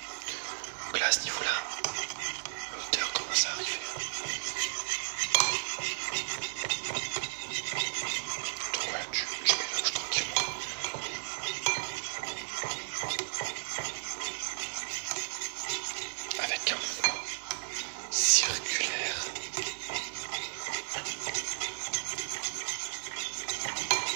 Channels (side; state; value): left; silent; digital silence